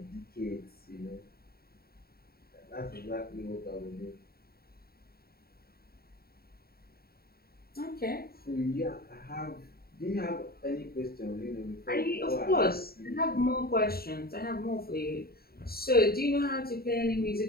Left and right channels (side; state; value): right; late; 0.45 ms